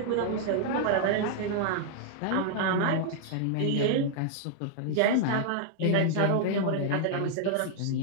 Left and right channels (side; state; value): both; different; correlation -0.01